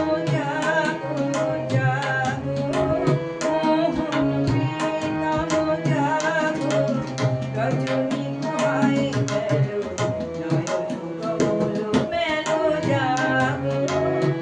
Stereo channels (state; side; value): identical; both; correlation 1.00